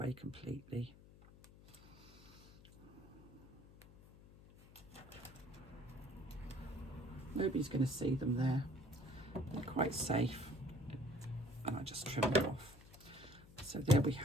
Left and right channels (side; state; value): left; noise; hum, 20 dB below the sound